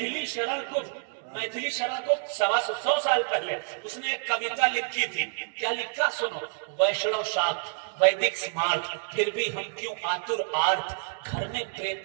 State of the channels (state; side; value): silent; left; 57 dB below the other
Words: शरण गुप्त। मैथिली शरण गुप्त 125 साल पहले उसने एक कविता लिखी थी। क्या लिखा सुनो। वैष्णव शाक्त वैदिक स्मार्ट, फिर भी हम क्यों आतुर आर्त, घर में